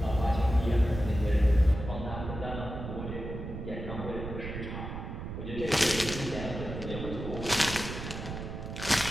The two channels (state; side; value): noise; right; rumble, 7 dB below the sound